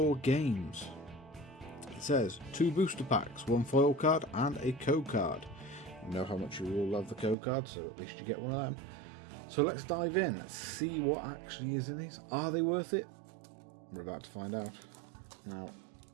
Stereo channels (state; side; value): drops out; left; at 7.4 s